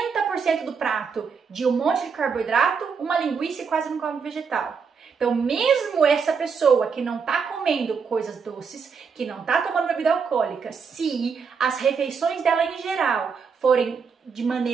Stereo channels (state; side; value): quieter; left; 5.8 dB